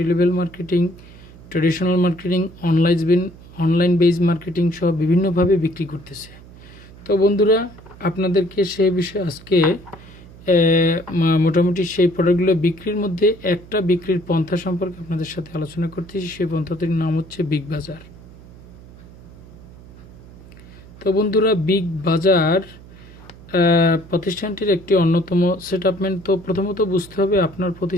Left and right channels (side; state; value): right; noise; hum, 20 dB below the sound